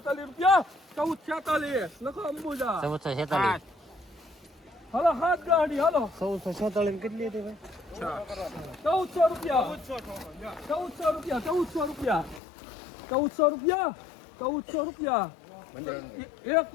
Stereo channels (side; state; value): right; drops out; at 12.4 s